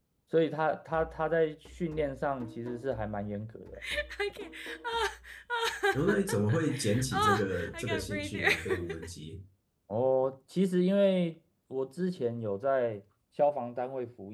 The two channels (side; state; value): both; identical; correlation 1.00